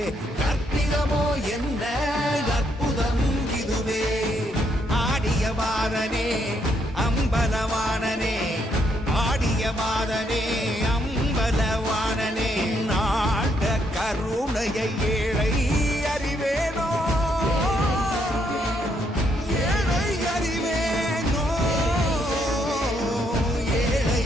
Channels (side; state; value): both; normal; correlation 0.74